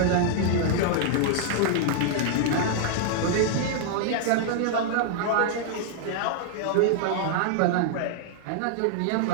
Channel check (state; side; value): different; both; correlation -0.01